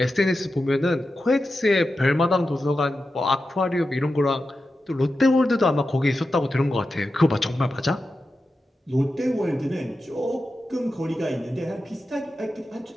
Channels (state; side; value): normal; both; correlation 0.91